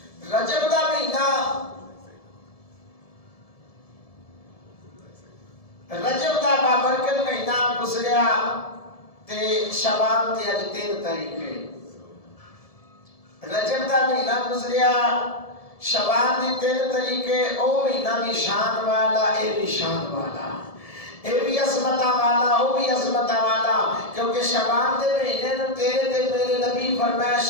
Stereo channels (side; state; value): right; late; 1.7 ms